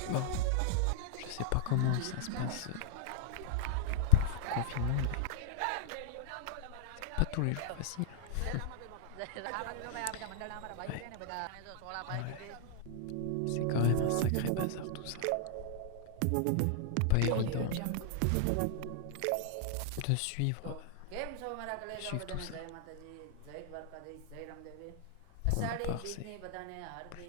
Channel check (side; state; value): both; different; correlation -0.01